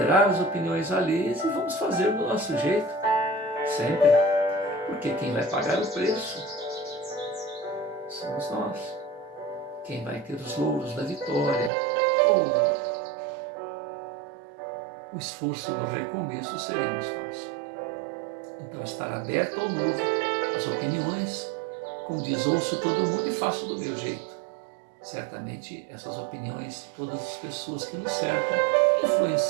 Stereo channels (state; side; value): drops out; left; at 11.7 s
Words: as opiniões alheias e vamos fazer do nosso jeito, sempre. Porque quem vai pagar o preço somos nós. Quem vai ter os louros da vitória ou o esforço do recomeço seremos nós. Então, estar aberto ao novo, às opiniões, como diz, ouço todo mundo e faço do meu jeito. Certamente, essas opiniões, todas as pessoas que nos cercam,